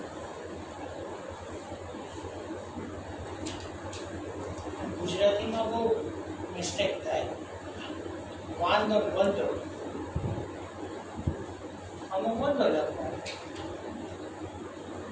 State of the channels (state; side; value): identical; both; correlation 1.00